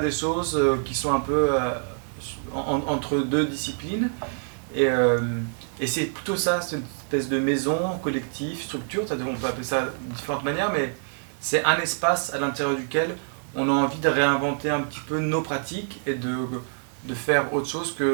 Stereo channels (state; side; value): silent; left; 61 dB below the other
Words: des choses qui sont un peu entre deux disciplines. Et c'est plutôt ça, c'est une espèce de maison, collectif, structure, on peut appeler ça de différentes manières, mais c'est un espace à l'intérieur duquel on a envie de réinventer un petit peu nos pratiques et de faire autre chose